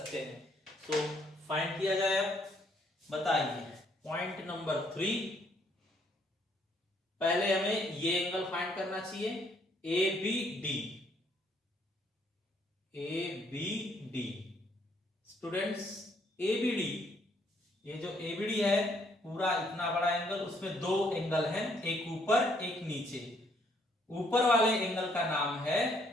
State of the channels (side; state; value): both; normal; correlation 0.68